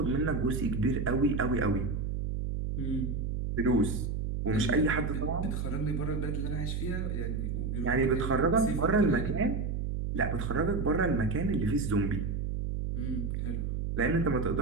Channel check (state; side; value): noise; right; hum, 1 dB below the sound